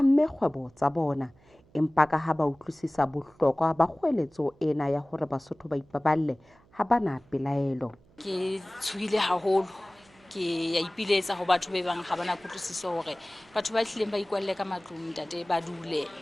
kgwebo tsa bona empa ka ha ba utlwisisa bohlokwa ba kgoeletso ena ya hore Basotho ba ipaballe ha bana pelaelo. Ke tshuhile haholo ke ya ipiletsa ho batho ba bang ha bana kutlwisiso hore batho ba hlileng ba ikwalle ka matlung ntate ba dule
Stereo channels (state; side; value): noise; right; hum, 30 dB below the sound